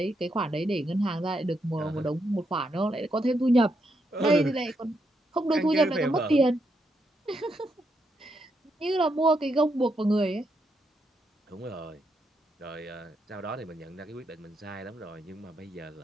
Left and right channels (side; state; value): both; normal; correlation 0.80